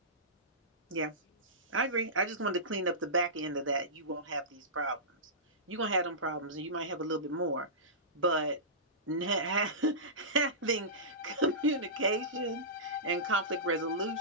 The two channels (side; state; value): both; normal; correlation -0.19